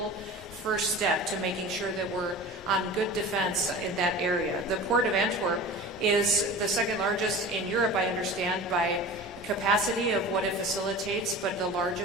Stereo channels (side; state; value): both; normal; correlation 0.36